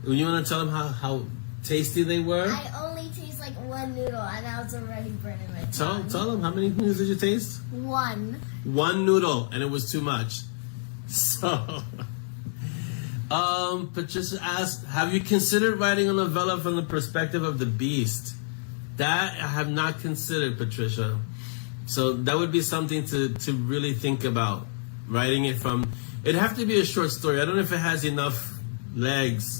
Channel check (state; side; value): silent; right; 58 dB below the other